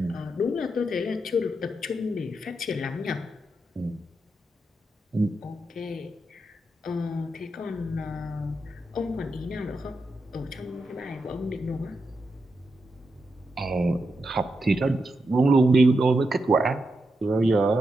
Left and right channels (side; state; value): both; normal; correlation 0.86